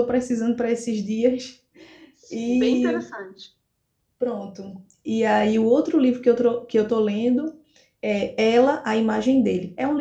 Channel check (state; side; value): identical; both; correlation 1.00